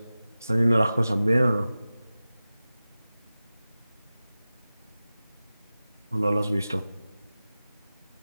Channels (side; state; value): both; inverted; correlation -0.95